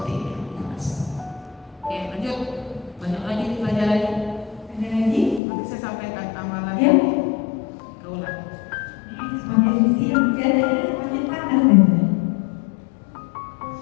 ini. Aku ikhlas. Oke, lanjut. Banyak lagi nih pelajarannya. Ada lagi? Nanti saya sampaikan amalan. Ya. Kaulah. Semakin siang keadaannya semakin panas nih.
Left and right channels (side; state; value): right; drops out; at 5.4 s